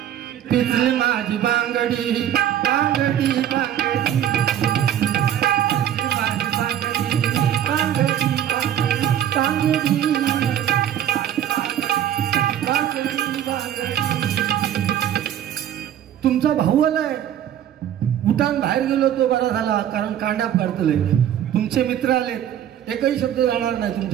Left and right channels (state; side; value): quieter; left; 10.6 dB